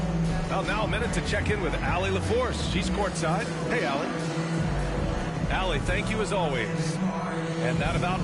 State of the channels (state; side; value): identical; both; correlation 1.00